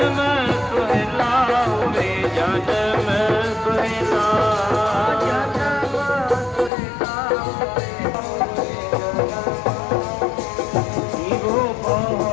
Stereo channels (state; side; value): drops out; right; at 6.7 s